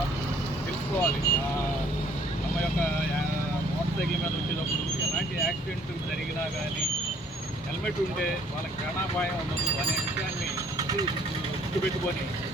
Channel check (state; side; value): normal; both; correlation 0.60